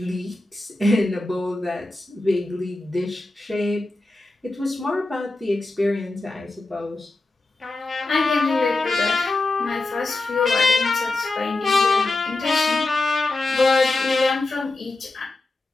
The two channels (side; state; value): right; quieter; 3.0 dB